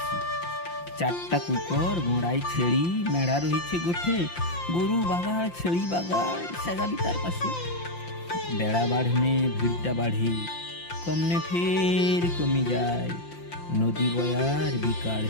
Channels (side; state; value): right; late; 5.8 ms